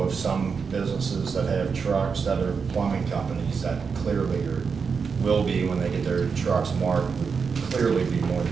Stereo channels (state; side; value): quieter; left; 5.6 dB